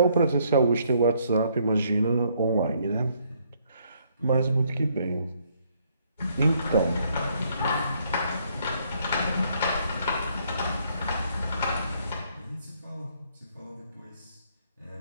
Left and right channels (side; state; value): both; inverted; correlation -0.68